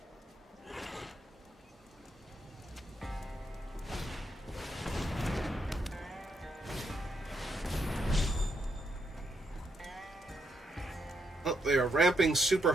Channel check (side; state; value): both; normal; correlation 0.78